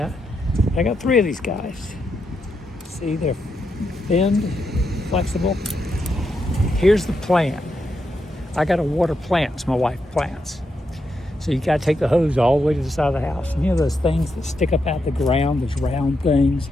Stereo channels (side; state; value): both; normal; correlation 0.83